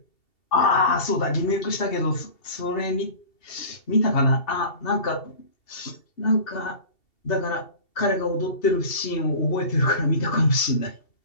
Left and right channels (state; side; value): late; right; 2.7 ms